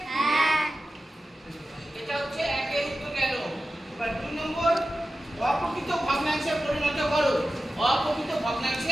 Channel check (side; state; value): both; normal; correlation 0.94